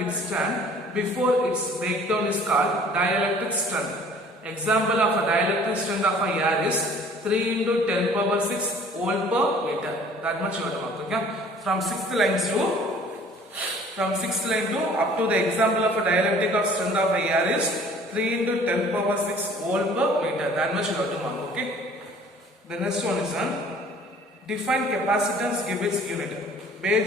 before its breakdown is called dielectric strength. Example of a dielectric strength of a air is 3 into 10 power 6 volt per meter. That much you have to mark, okay? From 6th line to up to the example of a dielectric of strength of a air is 3 into 10 power 6 volt per meter. That much you have to mark, okay? The next one is on define capacitance, give its unit.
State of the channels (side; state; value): both; normal; correlation 0.52